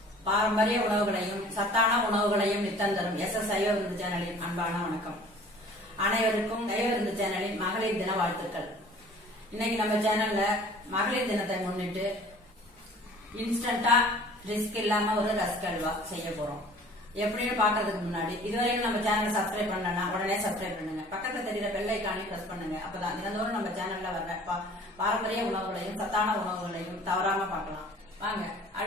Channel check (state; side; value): normal; both; correlation 0.49